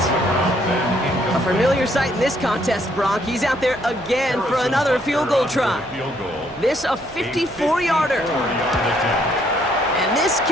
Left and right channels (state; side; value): noise; right; hum, 23 dB below the sound